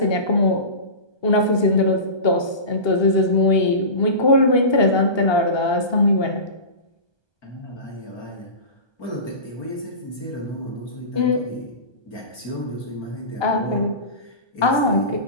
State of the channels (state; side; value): late; right; 1.2 ms